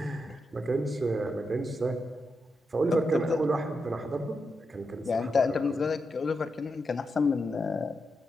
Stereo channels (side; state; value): both; normal; correlation 0.86